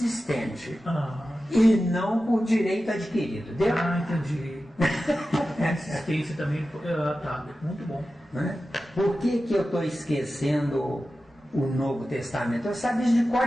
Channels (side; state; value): both; normal; correlation 0.93